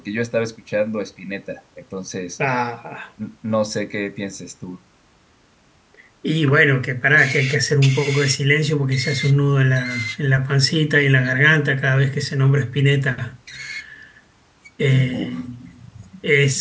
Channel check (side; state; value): both; identical; correlation 1.00